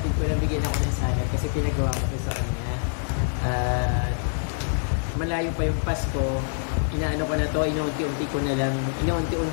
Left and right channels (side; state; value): right; silent; digital silence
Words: ko na bigyan ako ng salad kasi pinagawa ko sa kanya. Malayo pa yung Pasko, inaano ko na to, inuunti-unti